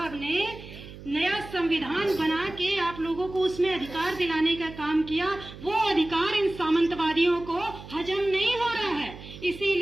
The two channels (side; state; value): right; noise; hum, 15 dB below the sound